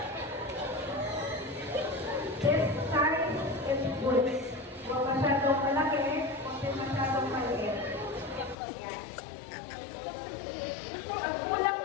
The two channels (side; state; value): right; drops out; at 8.6 s